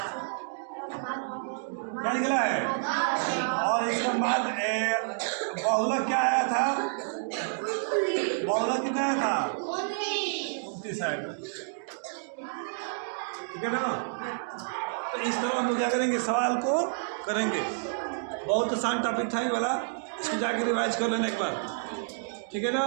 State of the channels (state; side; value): silent; left; digital silence